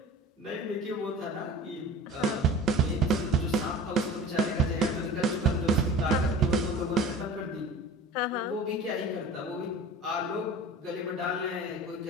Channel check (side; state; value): both; normal; correlation 0.39